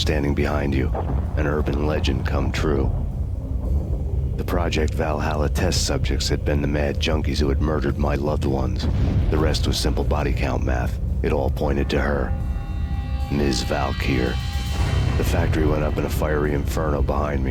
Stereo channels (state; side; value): identical; both; correlation 1.00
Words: behind you. An urban legend come true. The Project Valhalla test subjects had been the mad junkies who had murdered my loved ones. The rest was simple body count math. It all pointed to her. Ms. Valkyr. The factory went up in a fiery inferno behind